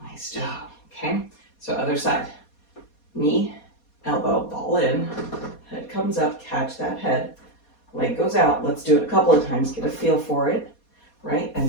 Nice job, okay? So other side. Knee, elbow, ball in, head comes up, catch that head, leg goes out. Let's do it a couple of times, get a feel for it, right? And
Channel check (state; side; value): late; right; 4.2 ms